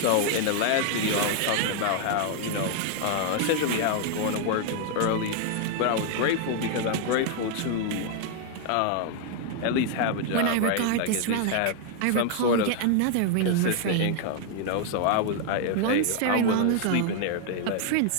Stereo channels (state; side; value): different; both; correlation 0.00